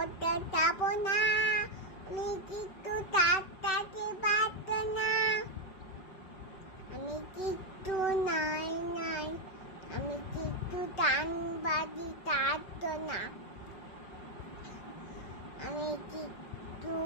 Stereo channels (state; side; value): late; right; 5.2 ms